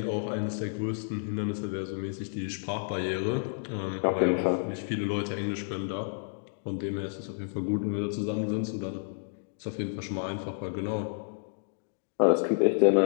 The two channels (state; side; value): silent; right; digital silence